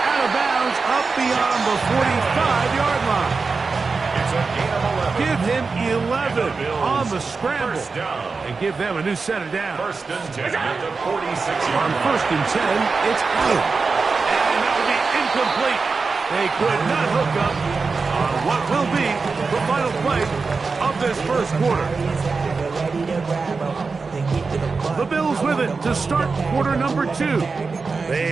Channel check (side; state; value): left; quieter; 4.5 dB